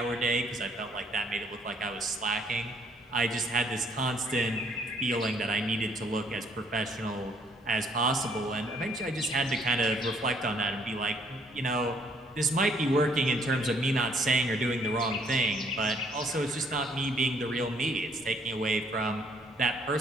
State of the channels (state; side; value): normal; both; correlation 0.66